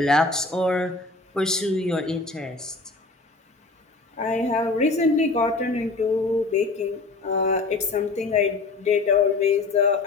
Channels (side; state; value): right; quieter; 3.5 dB